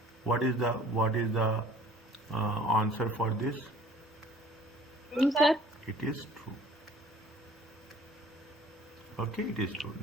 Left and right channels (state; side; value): normal; both; correlation 0.51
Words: What is the answer for this? True, sir. It is true. Okay, it is true.